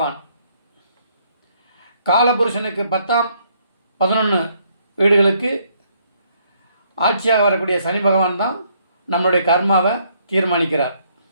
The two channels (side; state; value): both; inverted; correlation -0.69